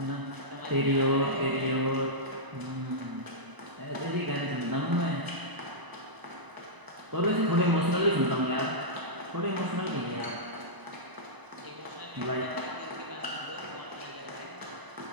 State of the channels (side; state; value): left; late; 1.0 ms